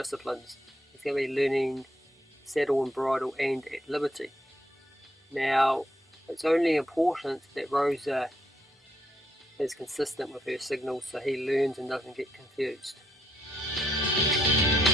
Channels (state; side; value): normal; both; correlation 0.74